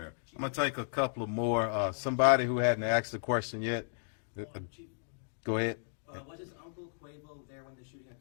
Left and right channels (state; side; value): silent; right; digital silence